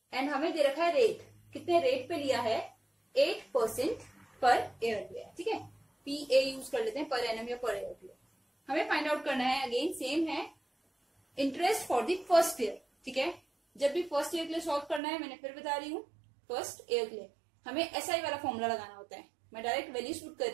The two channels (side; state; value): left; drops out; at 15.0 s